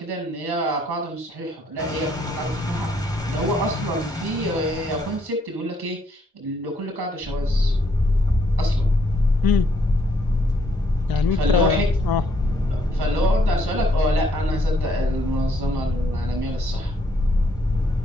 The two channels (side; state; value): both; normal; correlation 0.70